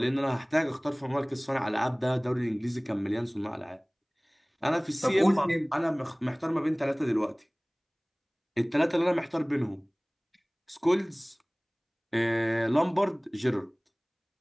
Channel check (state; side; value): identical; both; correlation 1.00